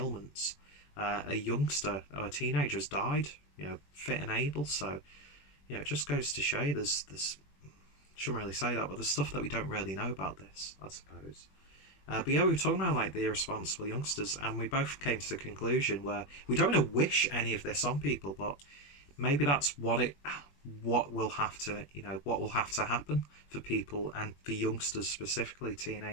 A youngster or a teenager has died, you know, fit and able. So, you know, it just goes to show you there's shouldn't really say that, but there's stuff that we don't really know about this, I suppose. But yeah, we were talking about like the irresponsible youngsters, and we both came to the conclusion where we don't want to wish any of this on people, but maybe that's what will have to, you know, what will have to happen for people, and for youngsters specifically,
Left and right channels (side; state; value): right; late; 21 ms